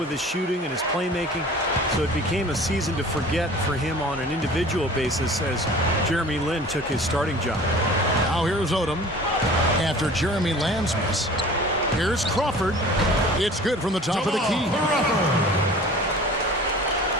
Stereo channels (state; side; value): normal; both; correlation 0.44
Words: his shooting and his playmaking, so it became a season to forget for him on an individual basis as Jeremy Lin took his starting job. Now here's Odom. After Jeremy Lamb's miss, here's Crawford. It's good from the top of the key.